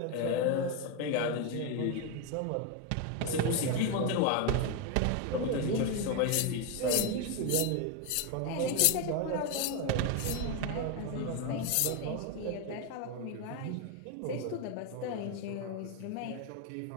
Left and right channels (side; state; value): both; different; correlation 0.02